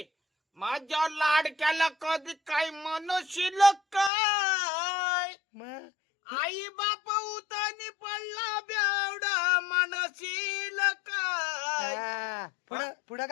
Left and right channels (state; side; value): drops out; right; at 4.1 s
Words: माझ्या लाडक्याला कधी काय म्हणशील काय मग आई बाप उतानी पडला बेवडा म्हणशील काय पुढं पुढं